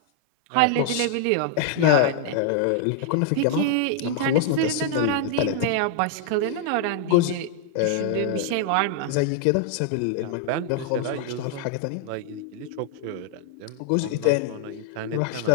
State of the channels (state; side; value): different; both; correlation 0.00